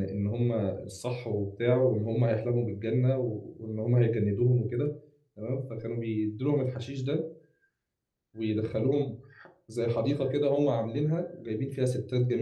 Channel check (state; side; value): identical; both; correlation 1.00